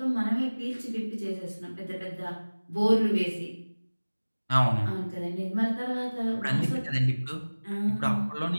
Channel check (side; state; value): both; inverted; correlation -1.00